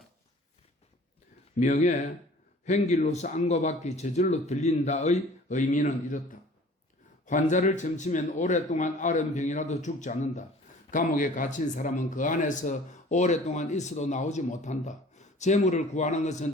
명예, 횡길로서 안과 밖이 저절로 들린다의 의미는 이렇다. 환자를 점치면 오랫동안 앓은 병이라도 죽지 않는다. 감옥에 갇힌 사람은 그 안에서 오랫동안 있어도 나오지 못한다. 재물을 구하는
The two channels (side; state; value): both; normal; correlation 0.48